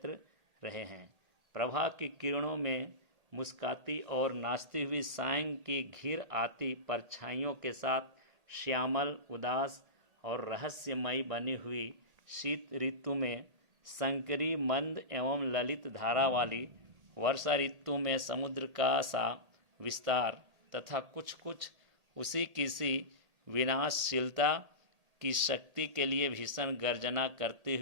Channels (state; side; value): late; left; 1.8 ms